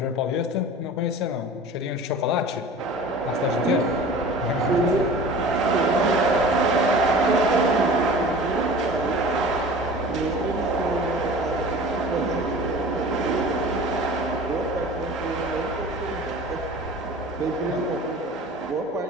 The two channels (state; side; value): normal; both; correlation 0.40